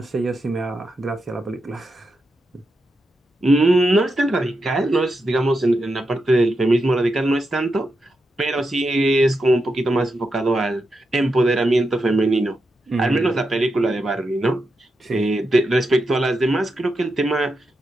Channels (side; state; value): both; normal; correlation 0.86